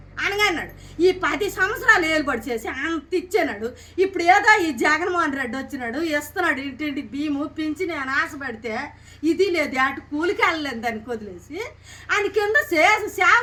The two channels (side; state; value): both; identical; correlation 1.00